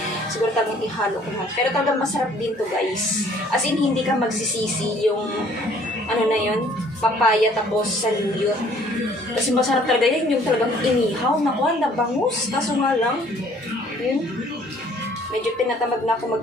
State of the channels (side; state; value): both; normal; correlation 0.58